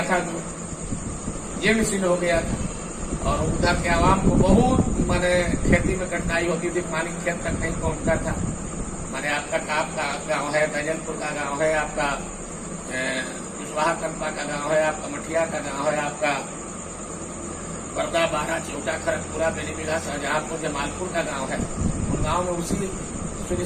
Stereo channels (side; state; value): both; identical; correlation 1.00